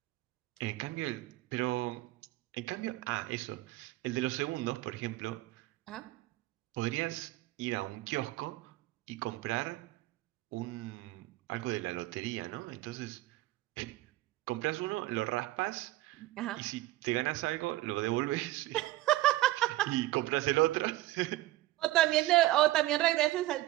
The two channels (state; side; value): quieter; left; 17.2 dB